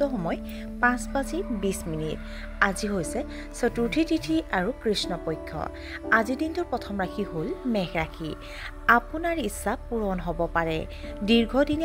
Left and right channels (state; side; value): identical; both; correlation 1.00